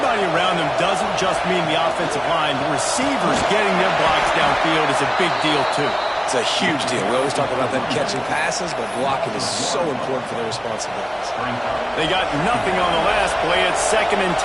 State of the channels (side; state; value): both; identical; correlation 1.00